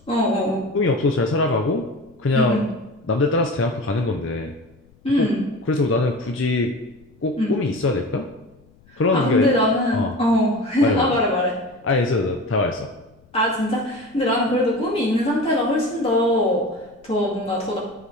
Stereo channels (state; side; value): noise; left; rumble, 30 dB below the sound